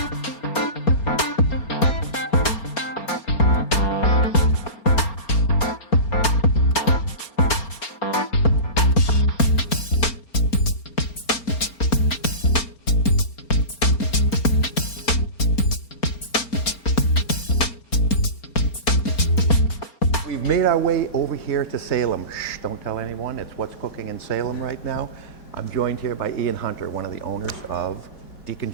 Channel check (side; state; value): right; late; 4.3 ms